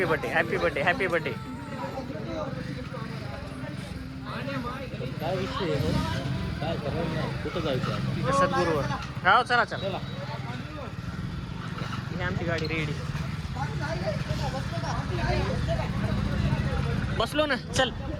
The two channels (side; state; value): both; identical; correlation 1.00